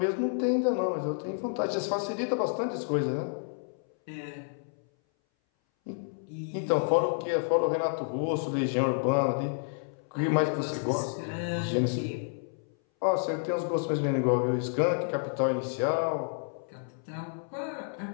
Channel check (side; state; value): right; silent; 58 dB below the other